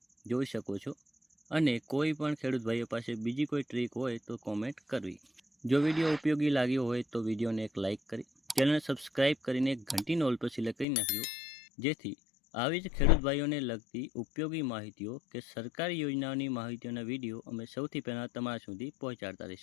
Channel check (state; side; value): drops out; right; at 10.9 s